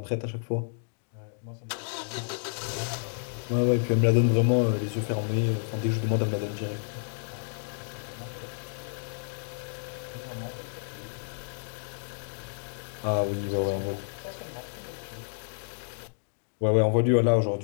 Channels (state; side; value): silent; right; digital silence